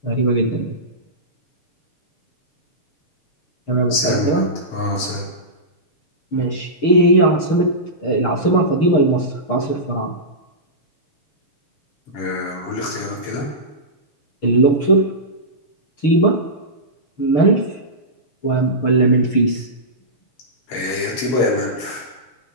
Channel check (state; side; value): late; right; 6.6 ms